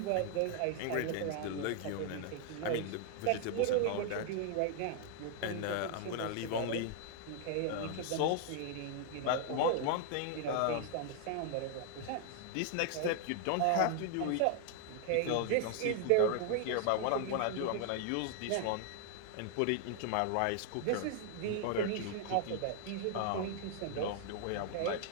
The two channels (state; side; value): different; both; correlation 0.00